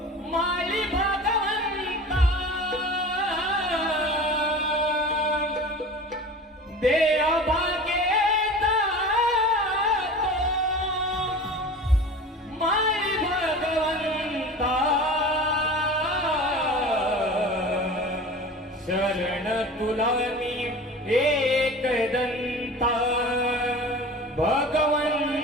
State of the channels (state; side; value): normal; both; correlation 0.37